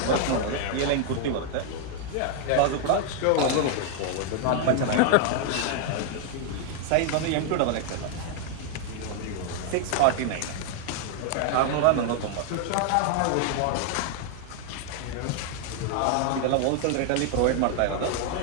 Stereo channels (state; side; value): different; both; correlation 0.00